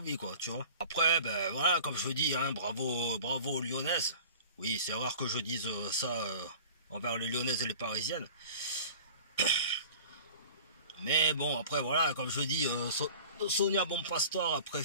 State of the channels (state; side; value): inverted; both; correlation -0.41